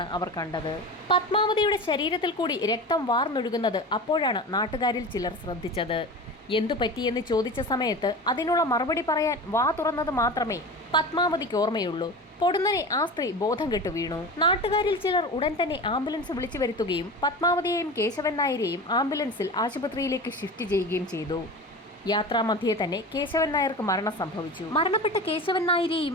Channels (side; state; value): both; normal; correlation 0.31